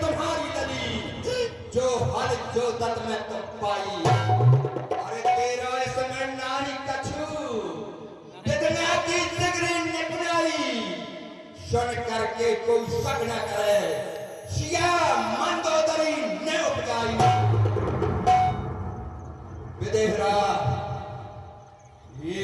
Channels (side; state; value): both; identical; correlation 1.00